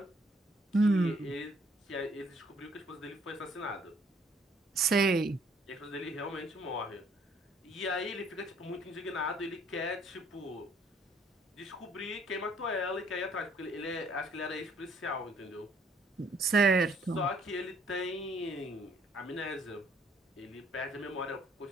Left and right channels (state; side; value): normal; both; correlation 0.63